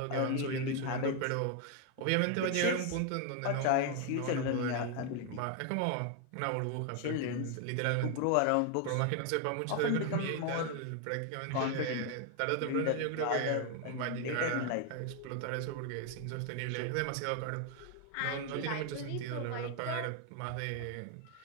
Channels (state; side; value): different; both; correlation 0.01